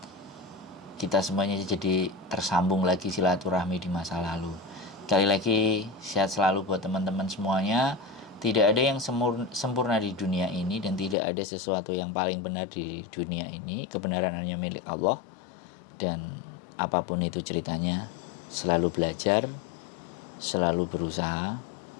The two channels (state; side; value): drops out; right; at 11.2 s